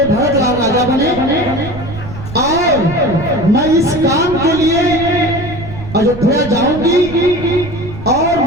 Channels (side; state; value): right; noise; rumble, 12 dB below the sound